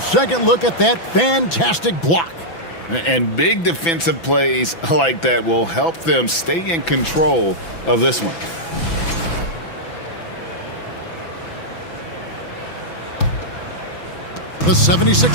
look at that fantastic block. And big defensive plays like that will help them stay in control of this one. The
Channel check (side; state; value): right; late; 6.0 ms